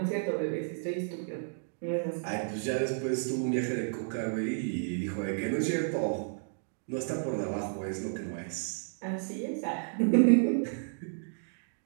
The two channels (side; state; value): left; silent; digital silence